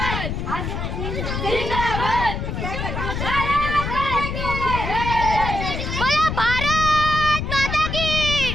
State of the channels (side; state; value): left; noise; rumble, 3 dB below the sound